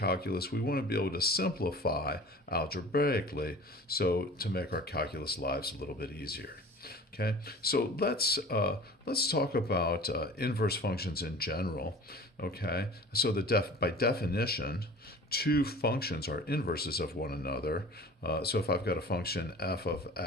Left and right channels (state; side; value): normal; both; correlation 0.42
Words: we want to be able to simplify algebraically so to make our calculus lives a little bit easier. Okay, so let's talk about inverse functions in general. Okay, so by definition, two functions are inverses of one another. So if I've got a function f of